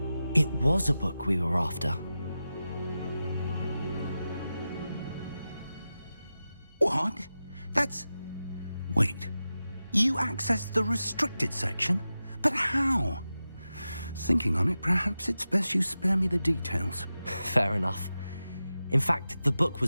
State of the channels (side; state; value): both; inverted; correlation -0.93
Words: It was a book we were after. What? That's... Wait. You accessed the restricted section? But how? Thinking on it, perhaps it's best you spare me the details. Fair enough. In fact, the book